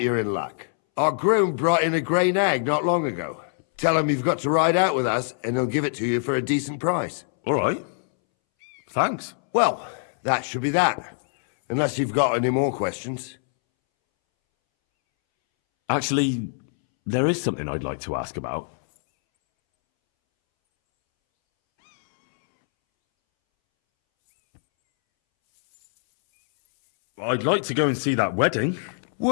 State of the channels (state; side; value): silent; right; 62 dB below the other